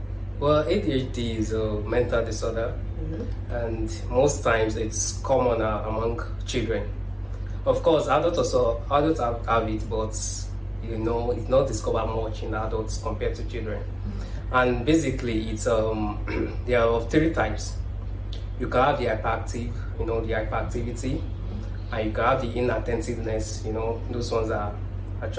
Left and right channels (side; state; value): both; identical; correlation 1.00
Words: Well, ADHD is a mental disorder, and most times it's common among children. Of course, adults have it, but it's not discovered much in adults compared to children. And basically, it's there are of three types. You can have the hyperactive, the hyperactivity, and you can have the inattentiveness. Those ones are